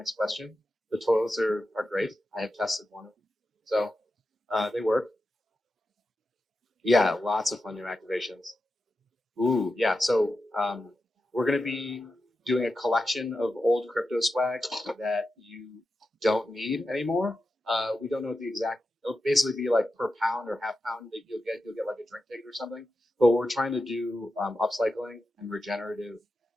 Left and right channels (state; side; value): normal; both; correlation 0.90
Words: question. The toilets are great. I have tested one of them, so they work. Yeah, lots of fun new activations. Ooh, yeah. So we're going to be doing a collection of old crypto swag that you don't need anymore. We don't know what the exact. It'll basically be like per pound or half pound that you'll get like a drink ticket or something. But we're trying to do upcycling and regenerative,